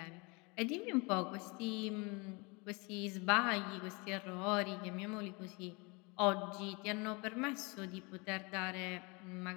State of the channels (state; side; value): quieter; right; 28.5 dB